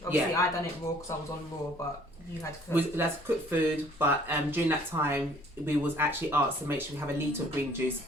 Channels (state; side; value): normal; both; correlation 0.57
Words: Obviously, yeah. I done it raw because I was on raw, but you had to cook. We was allowed to cook food, but during that time, we was actually asked to make sure we have a litre of green juice